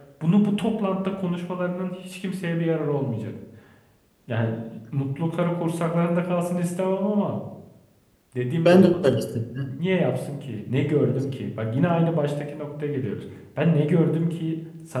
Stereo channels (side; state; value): both; identical; correlation 1.00